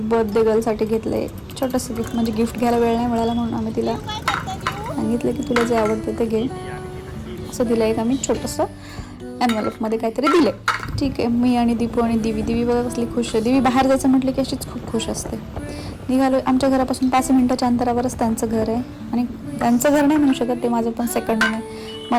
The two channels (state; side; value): identical; both; correlation 1.00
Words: गर्लसाठी घेतलंय छोटंसं गिफ्ट. म्हणजे गिफ्ट घ्यायला वेळ नाही मिळाला म्हणून आम्ही तिला सांगितलं की तुला जे आवडतं ते घे. असं दिलं एक आम्ही छोटंसं एनव्हलपमध्ये काहीतरी दिले. ठीक आहे. मी आणि दीपू आणि दिवी बघा कसली खुश आहे. दिवी बाहेर जायचं म्हटलं की अशीच खूप खुश असते. निघालो. आमच्या घरापासून 5 मिनिटाच्या अंतरावरच त्यांचं घर आहे. आणि त्यांचं घर नाही म्हणू शकत, ते माझं पण सेकंड होम आहे.